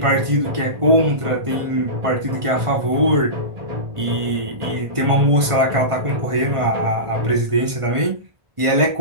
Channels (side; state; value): left; late; 1.5 ms